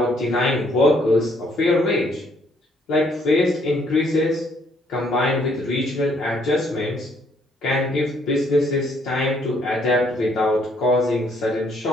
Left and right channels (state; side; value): normal; both; correlation 0.67